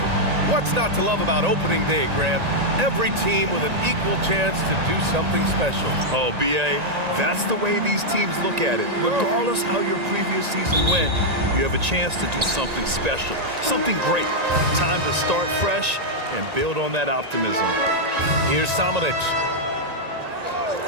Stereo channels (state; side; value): late; left; 1.9 ms